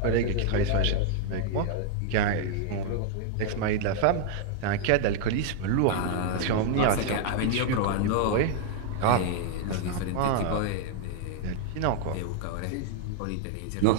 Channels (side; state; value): both; different; correlation 0.00